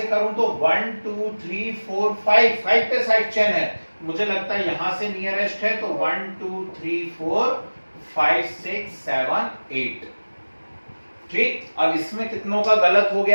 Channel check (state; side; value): inverted; both; correlation -1.00